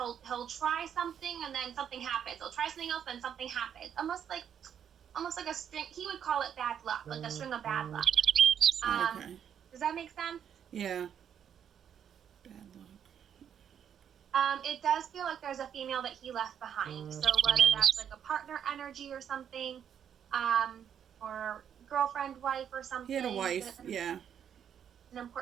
try something and then something happens. He'll try something else and something happens. Almost like a string. He would call it bad luck, like a string of bad luck. Okay. Does that make sense? Yeah. Bad luck. It does feel like there's a female that he left behind. So whether that's like a partner energy or something, or girlfriend, wife, or something. He had a wife. Yeah. An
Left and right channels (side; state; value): left; quieter; 8.7 dB